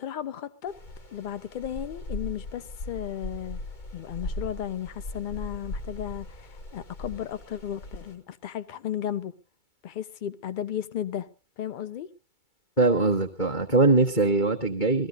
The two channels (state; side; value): late; right; 2.3 ms